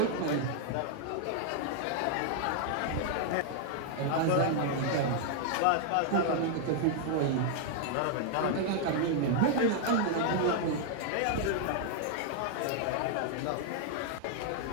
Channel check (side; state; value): both; different; correlation 0.00